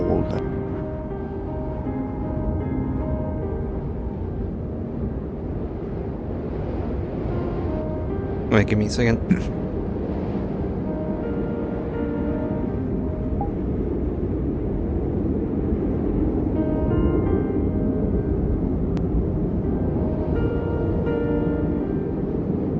Wait, give me a second.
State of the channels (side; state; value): both; identical; correlation 1.00